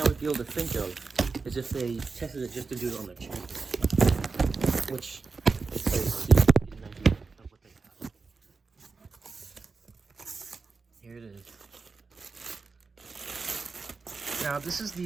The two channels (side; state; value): left; quieter; 4.5 dB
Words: would be able to think of is if they tested it just to do it on their channel, which is so get an idea of what they have. Here it is. Now, this is